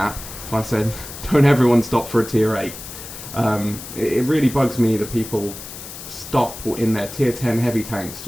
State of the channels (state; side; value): noise; left; hiss, 12 dB below the sound